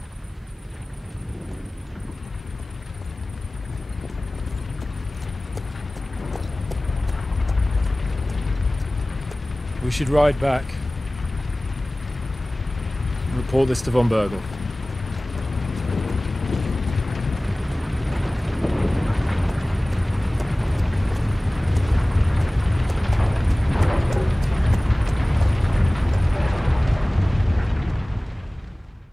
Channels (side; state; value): both; normal; correlation 0.98